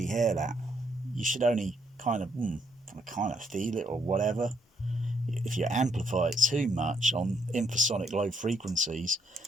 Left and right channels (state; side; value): normal; both; correlation 0.73